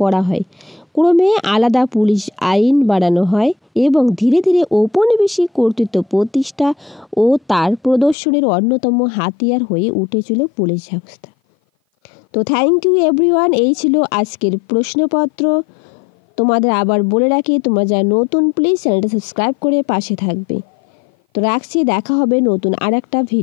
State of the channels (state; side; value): drops out; right; at 8.2 s